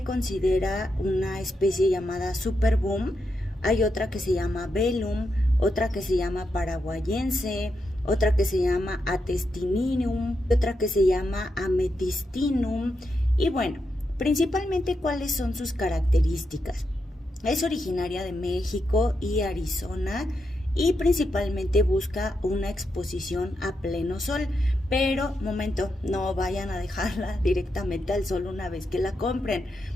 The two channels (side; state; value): both; normal; correlation 0.84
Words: considera una especie llamada Superboom. Hay otra que se llama Velum, otra que se llama Paraguayense, otra que se llama Atestininium, otra que se llama Ametistinum. Y bueno, principalmente cuáles son sus características. Es originaria de México y Arizona y principalmente busca una exposición a pleno sol. Pero, momento, no vayan a dejarla directamente al sol una vez que la compren.